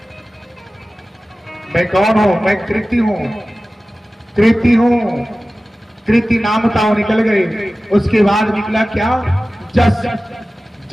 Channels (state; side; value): normal; both; correlation 0.96